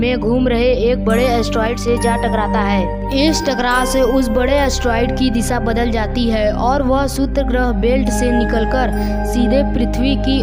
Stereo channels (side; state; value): both; identical; correlation 1.00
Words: घूम रहे एक बड़े एस्टेरॉयड से जा टकराता है। इस टकराव से उस बड़े एस्टेरॉयड की दिशा बदल जाती है और वह सूत्र ग्रह बेल्ट से निकलकर सीधे पृथ्वी की